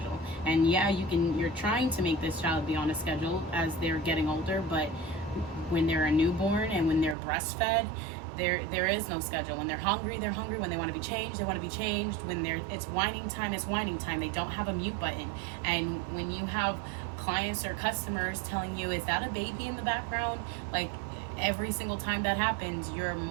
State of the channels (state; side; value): drops out; left; at 7.2 s